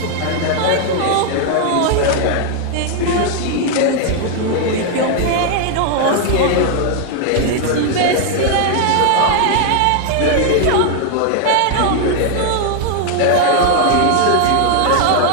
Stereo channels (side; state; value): both; different; correlation 0.00